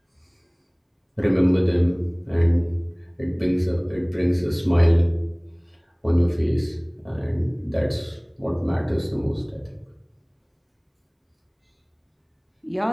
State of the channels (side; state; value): both; identical; correlation 1.00